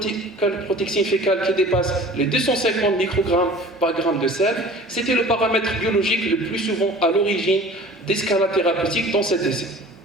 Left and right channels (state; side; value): normal; both; correlation 0.44